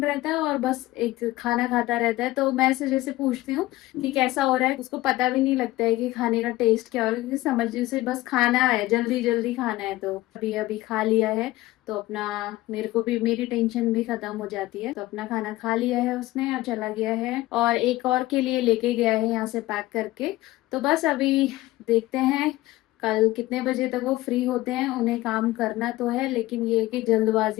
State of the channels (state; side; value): quieter; right; 17.6 dB